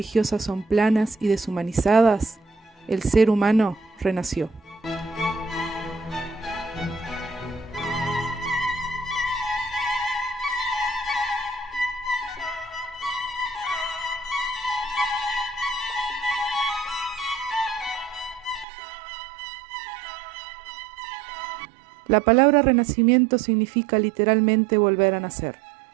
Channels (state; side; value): drops out; left; at 18.7 s